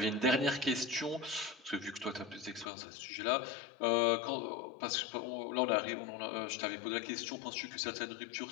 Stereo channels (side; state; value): right; drops out; at 2.7 s